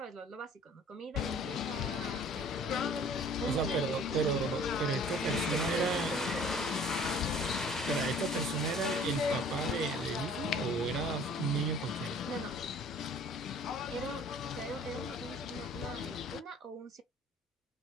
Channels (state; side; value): normal; both; correlation 0.51